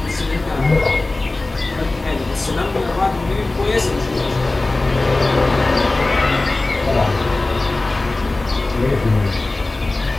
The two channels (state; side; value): quieter; right; 3.1 dB